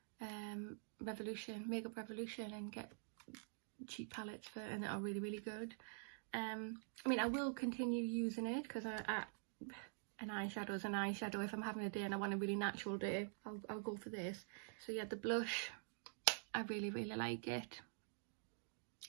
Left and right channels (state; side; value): silent; left; digital silence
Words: Makeup Revolution and get cheap palettes for, and they are really good. I mean, I will continue using it, because an eyeshadow is an eyeshadow. If I'm having a day and I want a really natural day, I'll go for this. So yeah, the blush, I really like it.